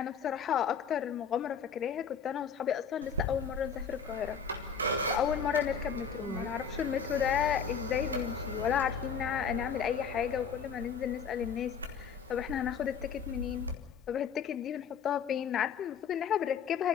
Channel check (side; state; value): right; quieter; 6.8 dB